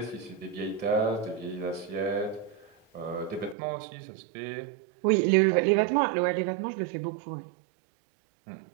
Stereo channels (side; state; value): left; drops out; at 3.6 s